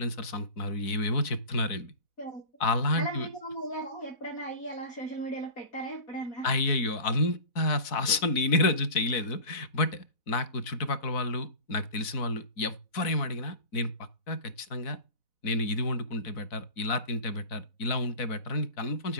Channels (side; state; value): right; late; 4.0 ms